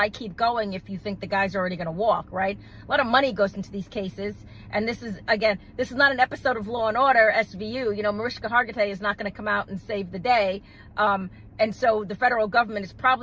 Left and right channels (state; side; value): identical; both; correlation 1.00